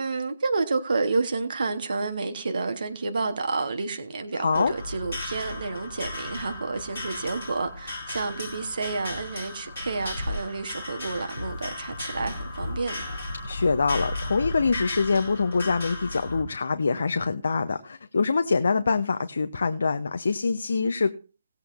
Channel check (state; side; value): inverted; both; correlation -0.87